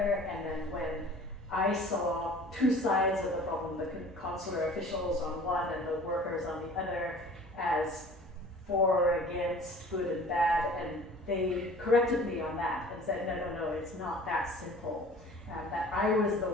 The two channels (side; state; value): both; normal; correlation 0.46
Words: and then when I saw two sides of the problem, the consular officials on one and the workers on the other, as for or against, good and bad, and they corrected me on that and said, no, it's not that simple. That I was the